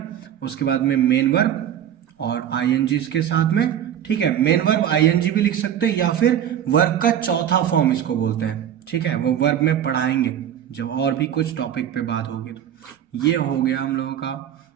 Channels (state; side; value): quieter; left; 10.0 dB